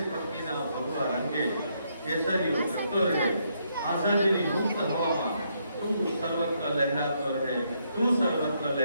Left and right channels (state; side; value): inverted; both; correlation -0.75